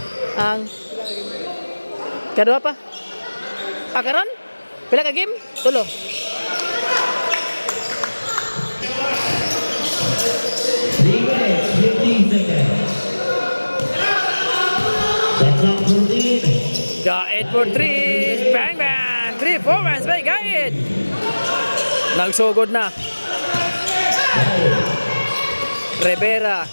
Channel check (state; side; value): inverted; both; correlation -1.00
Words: Ang kadua pa. Ah, karon? Pila ka game? Tulo. 3 minutes, 15 seconds. Shot clock 14. Gaid for 3. Bang bang. 3 forwards by Gaid. Nagsugod na. Rivera.